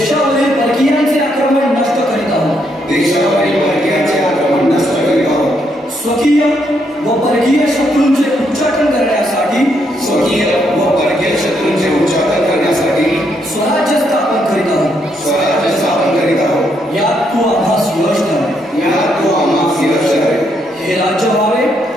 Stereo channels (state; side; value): normal; both; correlation 0.75